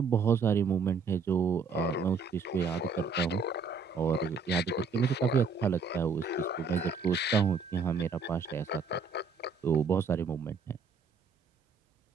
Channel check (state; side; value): quieter; left; 5.0 dB